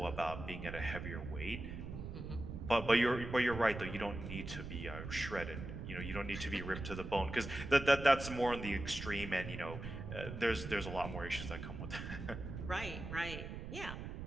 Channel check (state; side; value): noise; right; rumble, 8 dB below the sound